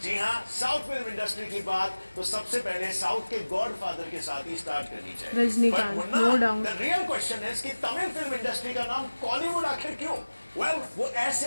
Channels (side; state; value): both; inverted; correlation -1.00